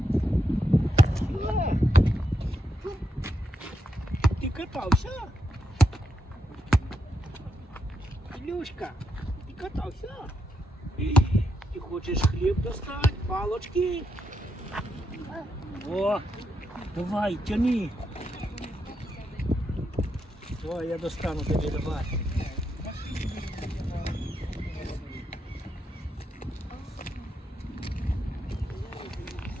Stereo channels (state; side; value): normal; both; correlation 0.82